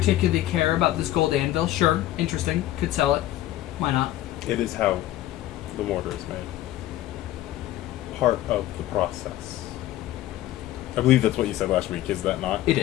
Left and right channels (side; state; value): right; quieter; 14.3 dB